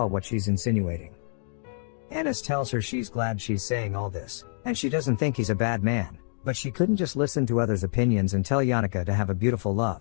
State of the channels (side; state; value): right; silent; digital silence